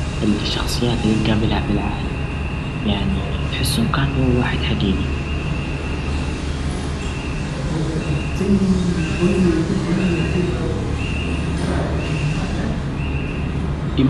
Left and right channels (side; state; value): both; identical; correlation 1.00